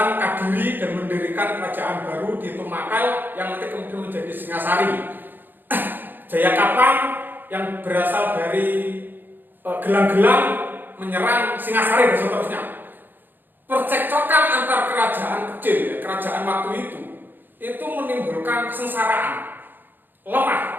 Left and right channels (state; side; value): late; left; 0.092 ms